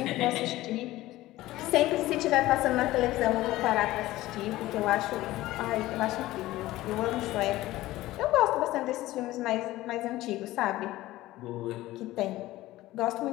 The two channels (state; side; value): quieter; right; 16.8 dB